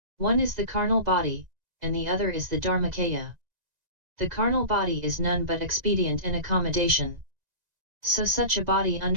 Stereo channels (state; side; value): late; left; 1.9 ms